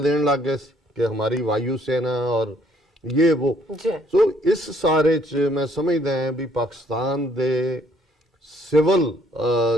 ਦੇਣ ਲੱਗ ਗਏ ਸੀ ਕਿ ਹਮਾਰੀ ਵਾਯੂ ਸੈਨਾ ਔਰ ਇਹ ਉਹ। ਜੀ ਸੋ ਇਸ ਸਾਰੇ ਚ ਮੈਂ ਸਮਝਦਾ ਹਾਂ ਵੀ ਪਾਕਿਸਤਾਨ ਦੇ ਸਿਵਲ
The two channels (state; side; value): normal; both; correlation 0.65